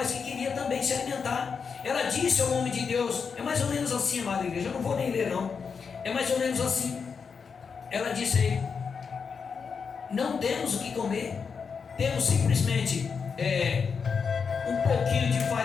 que queria também se alimentar. Ela disse ao homem de Deus, é mais ou menos assim, amada igreja, eu não vou nem ler não, é mais ou menos assim. Ela disse a ele, não temos o que comer, temos simplesmente um pouquinho de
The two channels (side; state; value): right; quieter; 5.8 dB